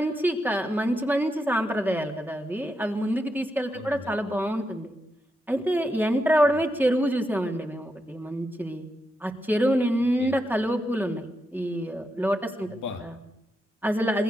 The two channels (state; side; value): normal; both; correlation 0.85